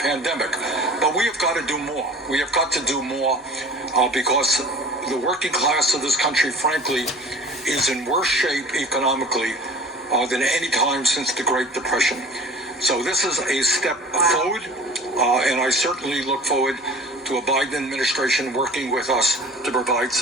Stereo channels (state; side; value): normal; both; correlation 0.42